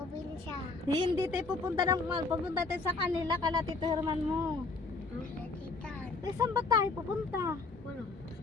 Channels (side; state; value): right; quieter; 3.8 dB